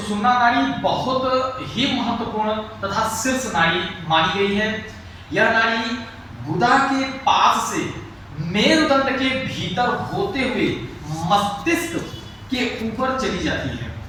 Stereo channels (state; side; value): identical; both; correlation 1.00